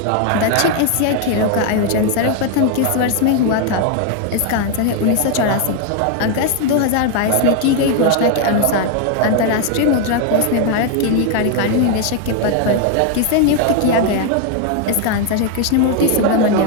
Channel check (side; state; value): both; different; correlation 0.00